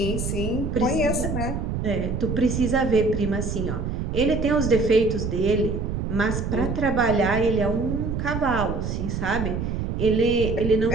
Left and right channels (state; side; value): noise; right; rumble, 3 dB below the sound